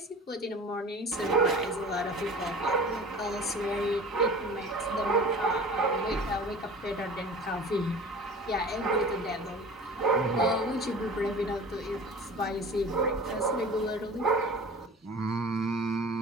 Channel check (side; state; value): both; normal; correlation 0.40